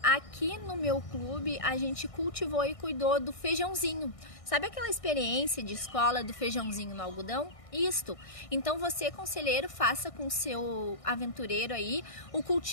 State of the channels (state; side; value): late; right; 1.6 ms